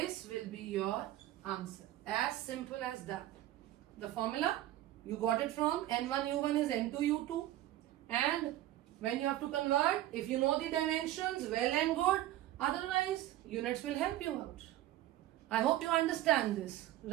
will be your answer. As simple as that. The formula, you got it from N1U1 is N2U2. And when you have to convert, if you know the dimensions, well and good. Otherwise, units will help you out. I hope you understand this,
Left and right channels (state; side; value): quieter; left; 14.4 dB